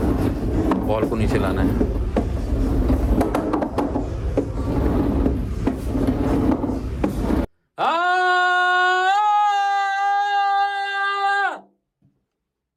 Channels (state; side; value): identical; both; correlation 1.00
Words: बॉल को नीचे लाना है।